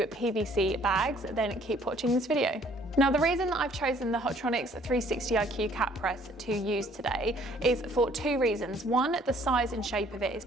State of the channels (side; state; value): both; normal; correlation 0.59